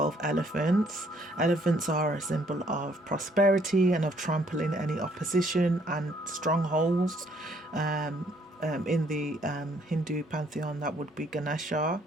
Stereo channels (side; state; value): both; normal; correlation 0.66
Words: elephants. Elephants are a symbol of prosperity and of trampling any opposition and strongholds. In the Hindu pantheon, that would be Ganesha